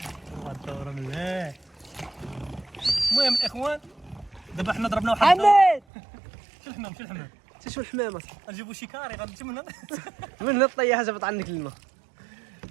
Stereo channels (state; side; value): drops out; left; at 5.8 s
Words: الدوره مليح. المهم الاخوان دابا حنا ضربنا واحد حماد شو الحمام شو الحمامه نجيبو شي كاري غنمشي من هنا من الطيحه جابت عنك الماء.